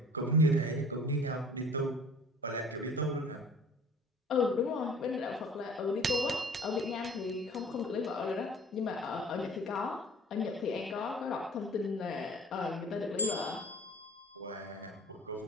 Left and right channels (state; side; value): normal; both; correlation 0.48